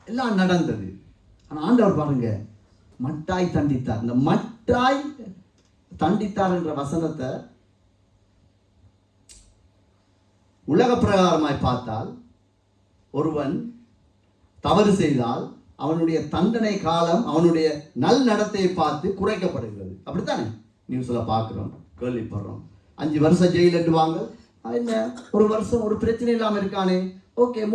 எல்லாம் நடந்தது. ஆனால் ஆண்டவர் பாருங்க, மட்டாய் தண்டித்தார். இந்த மட்டாய் தண்டித்தார் என்ற வசனத்தை உலக பிரகாரமாய் பார்த்தால், ஒருவன் தவறு செய்தால் அவனுடைய தண்டனை காலம் அவனுடைய நல் நடத்தையை பார்த்து குறைக்கப்படுகிறது. அப்படித்தானே நியூஸ்ல பார்க்கிறோம், கேள்விப்படுறோம். 5 வருஷம் ஜெயில் எட்டுவாங்க. என்ன, ஒரு வருஷம் ஒரு பிரச்சனை இல்லாமல் இருக்கானே, ஓகே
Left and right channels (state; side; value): identical; both; correlation 1.00